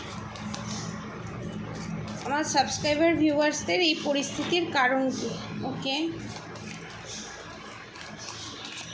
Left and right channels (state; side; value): identical; both; correlation 1.00